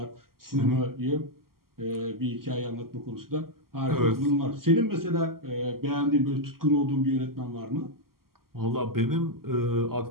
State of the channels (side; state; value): left; late; 0.92 ms